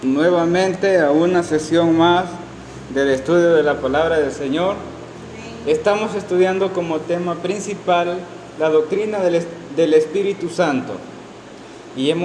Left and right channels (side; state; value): both; identical; correlation 1.00